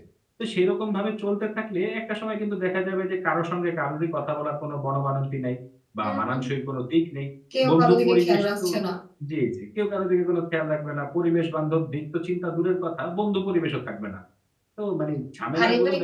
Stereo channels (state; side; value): identical; both; correlation 1.00